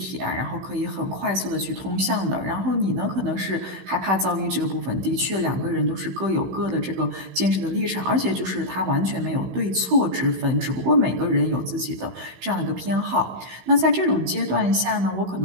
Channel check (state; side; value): late; left; 16 ms